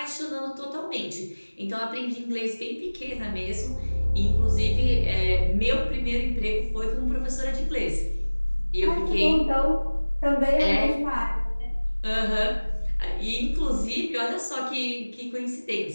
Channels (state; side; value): inverted; both; correlation -1.00